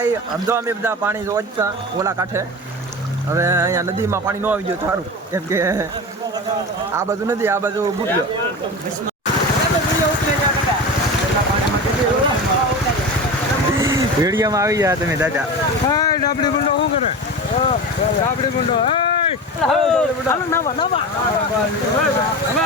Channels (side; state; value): both; normal; correlation 0.27